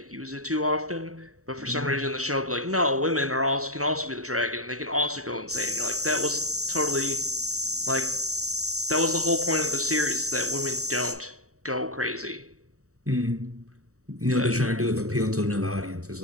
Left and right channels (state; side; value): late; left; 0.65 ms